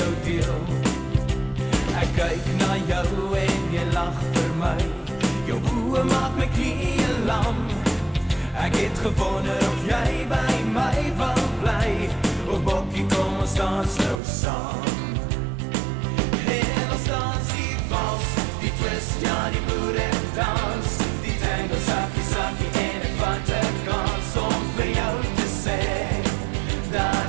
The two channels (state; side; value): drops out; left; at 14.2 s